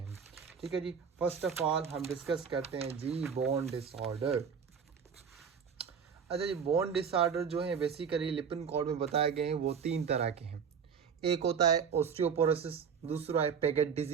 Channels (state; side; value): quieter; left; 6.7 dB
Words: ठीक है जी। फर्स्ट ऑफ ऑल हम डिस्कस करते हैं जी बोन डिसऑर्डर। अच्छा जी, बोन डिसऑर्डर जो है बेसिकली लिपिन कोड में बताए गए हैं वो तीन तरह के हैं। एक होता है ऑस्टियोपोरोसिस, दूसरा है पेगेट